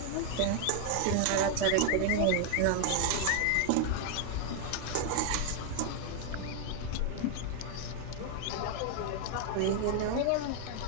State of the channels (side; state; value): both; different; correlation 0.00